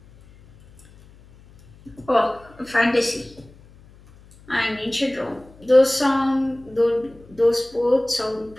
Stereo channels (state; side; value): noise; left; hum, 25 dB below the sound